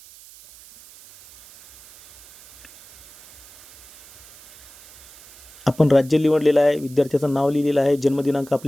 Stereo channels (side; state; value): right; noise; hiss, 22 dB below the sound